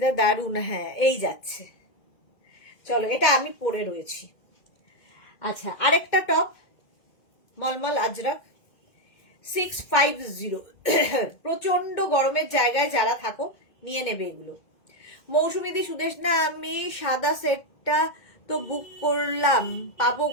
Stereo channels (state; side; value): late; right; 2.2 ms